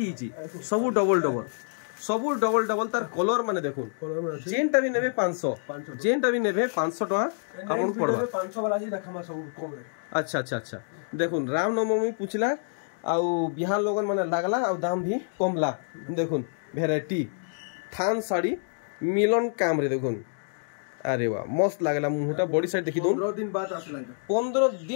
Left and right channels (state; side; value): silent; right; digital silence